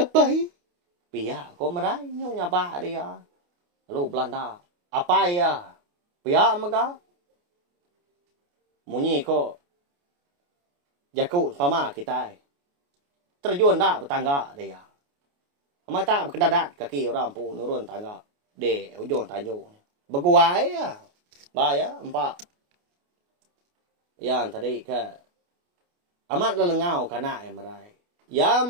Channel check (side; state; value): left; late; 28 ms